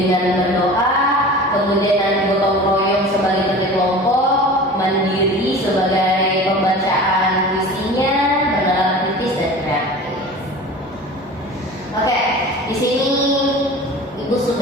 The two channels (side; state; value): both; normal; correlation 0.38